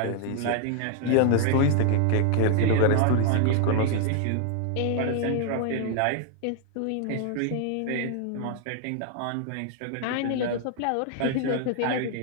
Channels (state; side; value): different; both; correlation 0.00